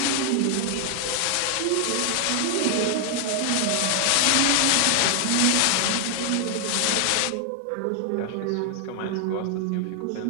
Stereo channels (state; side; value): different; both; correlation 0.00